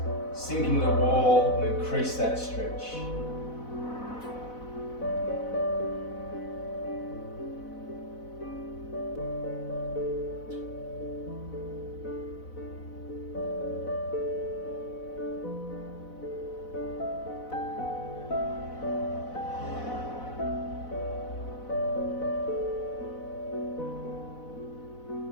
sink into the wall, and increase that stretch.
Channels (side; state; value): right; late; 4.0 ms